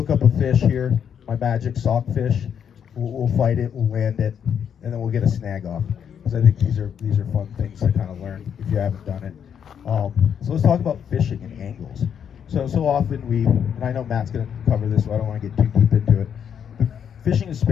up a fish here, my magic sock fish. We'll fight it, we'll land it, and then we'll get a snag off. Because I think these are fun things to kind of learn if you haven't done it. So let's talk about fishing and angles. So often and I know Matt's going to cover this, so I don't want to get too deep into it. But fishing a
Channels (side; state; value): right; quieter; 8.1 dB